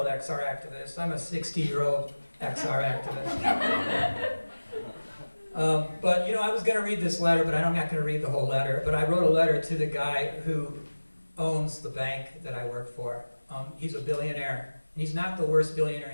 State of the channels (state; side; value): inverted; both; correlation -1.00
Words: XR activist. I'm a 60-year-old XR activist. But I was going to read this letter, but I'm not going to read the whole letter. But I wrote a letter to the guy who owns the bank that I work for. He's a billionaire. And he's not the worst billionaire